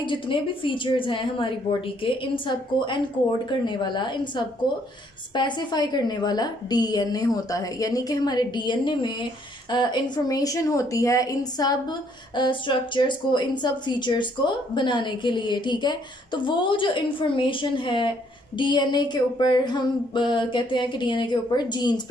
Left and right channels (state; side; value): normal; both; correlation 0.66